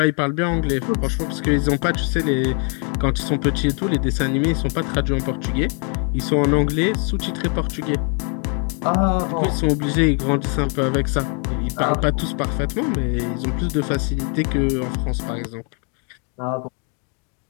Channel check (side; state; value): right; quieter; 38.8 dB